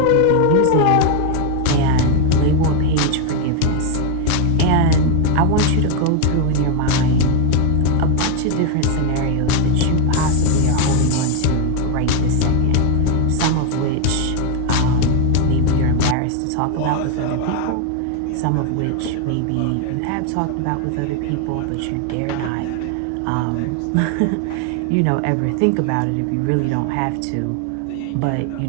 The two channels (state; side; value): different; both; correlation 0.01